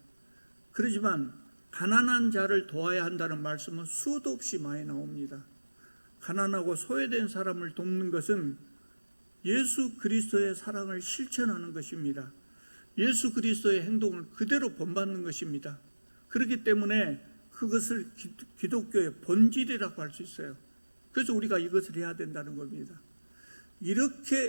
그렇지만 가난한 자를 도와야 한다는 말씀은 수도 없이 많이 나옵니다. 가난하고 소외된 사람을 돕는 것은 예수 그리스도의 사랑을 실천하는 것입니다. 예수 그리스도의 행동을 그대로 본받는 것입니다. 그렇기 때문에 그것을 기독교의 본질이라고 할 수 있어요. 그래서 우리가 이것을 해야 된다는 겁니다.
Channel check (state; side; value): inverted; both; correlation -1.00